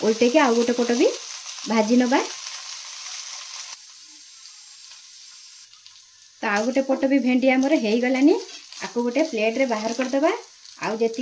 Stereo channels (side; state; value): both; identical; correlation 1.00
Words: उल्टे के आउ गोटे पट भी भाजी नबा। तो आउ गोटे पट भी भेंडी हमर हेई गलानी। आको गोटे प्लेट रे बाहर कर दबा। आउ